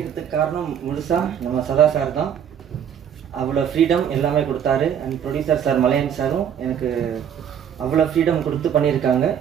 காரணம் முழுசா நம்ம சதா சார் தான். அவ்வளோ ஃப்ரீடம் எல்லாமே கொடுத்தாரு. அண்ட் ப்ரொடியூசர் சார் மலையன் சாரும் எனக்கு அவ்வளோ ஃப்ரீடம் கொடுத்து பண்ணியிருக்காங்க.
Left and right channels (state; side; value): quieter; left; 8.8 dB